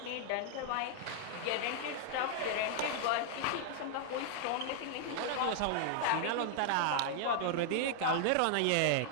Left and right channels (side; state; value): both; different; correlation -0.01